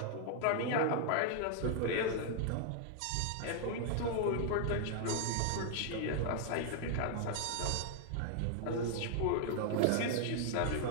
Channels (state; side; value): different; both; correlation 0.00